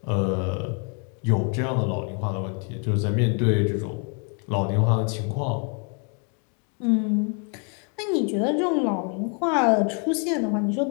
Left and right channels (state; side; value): quieter; right; 38.8 dB